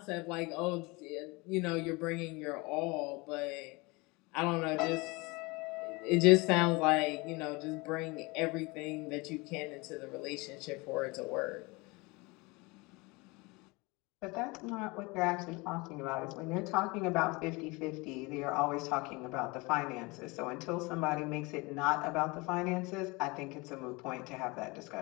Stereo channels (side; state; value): right; quieter; 25.5 dB